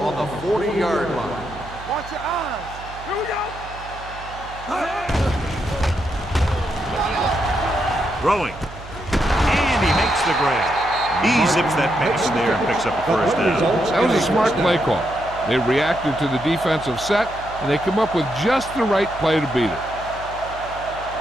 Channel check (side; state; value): right; noise; hum, 16 dB below the sound